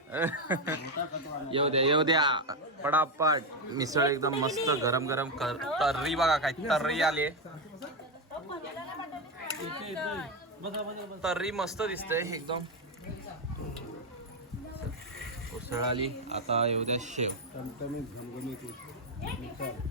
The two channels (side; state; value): both; normal; correlation 0.08